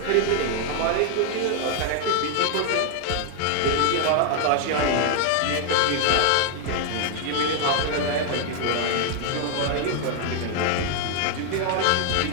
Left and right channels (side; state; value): both; different; correlation 0.00